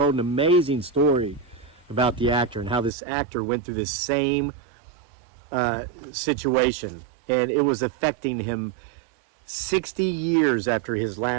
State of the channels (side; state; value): left; drops out; at 2.9 s